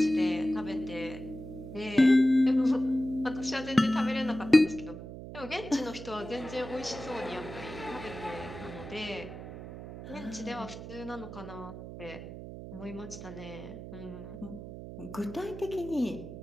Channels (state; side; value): noise; right; hum, 11 dB below the sound